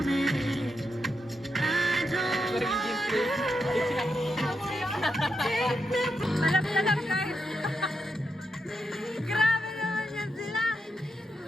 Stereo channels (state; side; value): normal; both; correlation 0.84